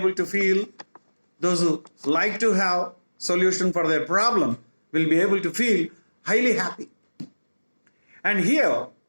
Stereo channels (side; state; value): both; inverted; correlation -1.00